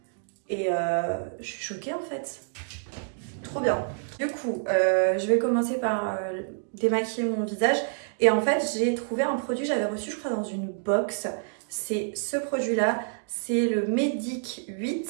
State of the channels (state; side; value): silent; left; digital silence